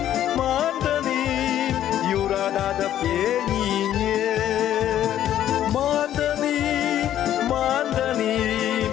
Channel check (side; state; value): right; quieter; 11.5 dB